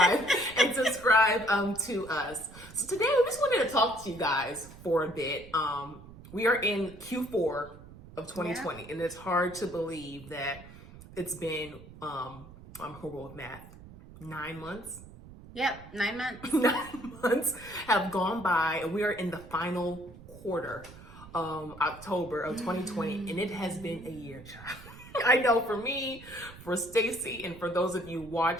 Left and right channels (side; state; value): right; noise; rumble, 18 dB below the sound